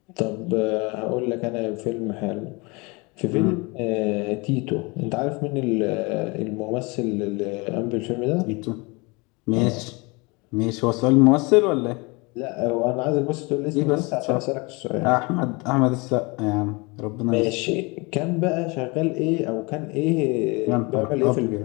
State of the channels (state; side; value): quieter; right; 27.4 dB